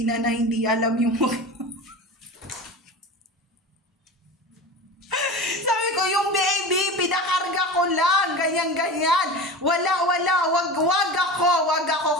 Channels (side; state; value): both; normal; correlation 0.31